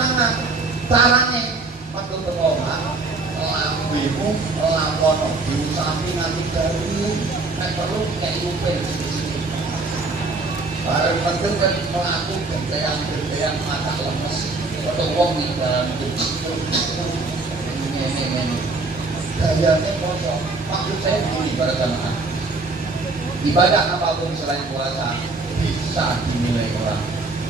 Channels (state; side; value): quieter; left; 3.6 dB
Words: Carane metu ke omah, lambimu lakono diusapi nanti dari nek perlu kayak upil sisi. Bareng penting kan melaku gentean mata lemes. Foto wong ning dalam itu. Ini. Gayane poso. Maksud saya begini para jamaah. Ibadah apapun selain puasa bisa dinilai orang.